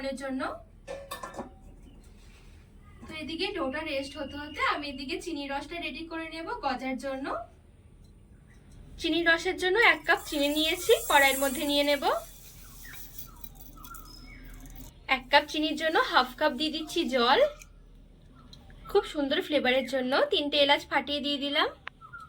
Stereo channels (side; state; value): both; identical; correlation 1.00